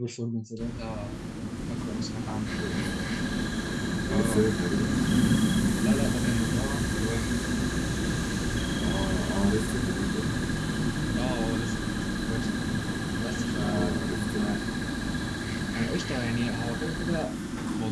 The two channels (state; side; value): identical; both; correlation 1.00